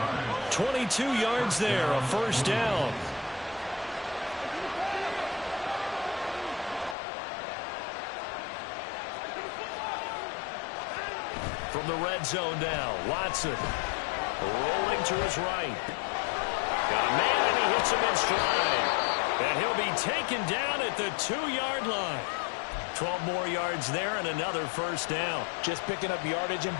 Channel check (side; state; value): right; drops out; at 7.0 s